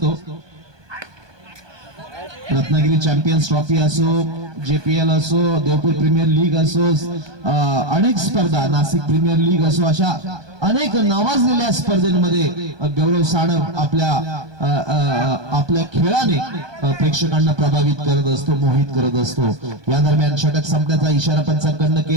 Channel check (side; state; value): left; late; 1.2 ms